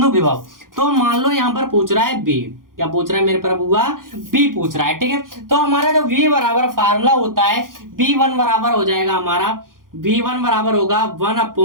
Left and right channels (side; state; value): left; late; 0.91 ms